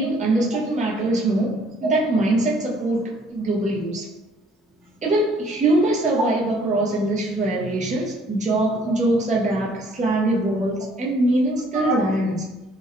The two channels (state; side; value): normal; both; correlation 0.61